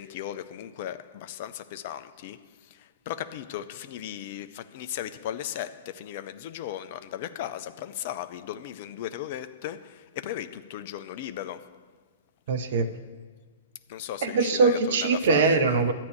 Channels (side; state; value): both; inverted; correlation -0.38